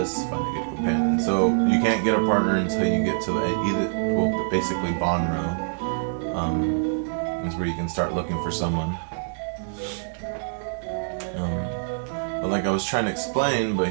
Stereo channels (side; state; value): left; silent; digital silence